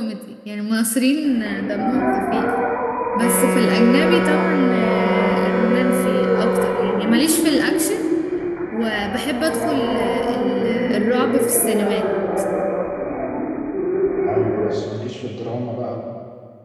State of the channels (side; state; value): both; identical; correlation 1.00